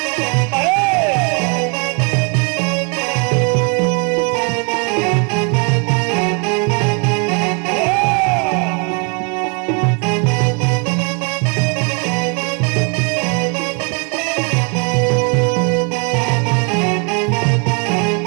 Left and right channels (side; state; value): left; quieter; 35.0 dB